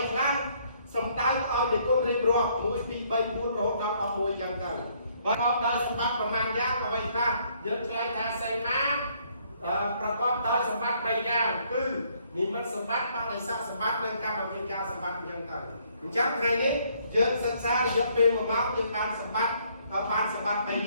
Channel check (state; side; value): inverted; both; correlation -0.67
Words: ខ្លះសំដៅឲ្យនិគុណរៀបរាប់1 2 3 4រហូតដល់11យ៉ាងទៅប្រកបដោយសម្បត្តិប៉ុន្មានយ៉ាងអ្វីខ្លះយើងឆ្លើយថាសីមាប្រកបដោយសម្បត្តិ3យ៉ាងគឺនិមិត្តសម្បត្តិបដិស័កសម្បត្តិនិងកម្មវិការសម្បត្តិយ៉ាងទៅអញ្ចឹងថ្ងៃនេះយើងសិក្សារយៈពេល1ម៉ោងយើងបានសម្បត្តិ